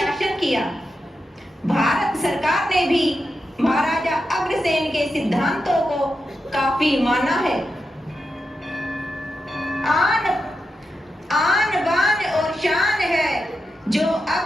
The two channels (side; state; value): both; normal; correlation 0.87